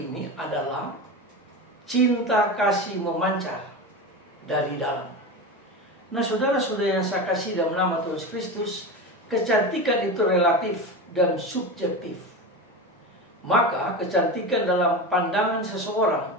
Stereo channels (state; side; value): normal; both; correlation 0.23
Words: ini adalah cinta kasih memancar dari dalam. Nah, saudara-saudara yang saya kasih dalam nama Tuhan Kristus, kecantikan itu relatif dan subjektif. Maka kecantikan dalam pandangan